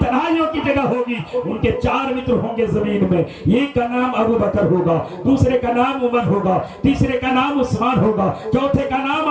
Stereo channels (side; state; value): both; identical; correlation 1.00